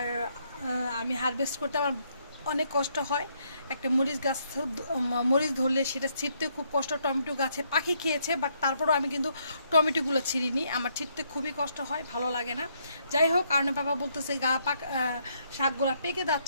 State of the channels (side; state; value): both; inverted; correlation -0.72